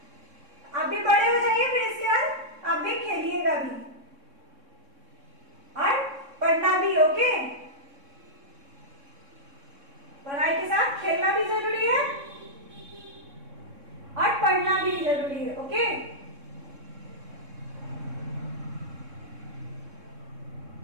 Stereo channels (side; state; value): left; late; 3.6 ms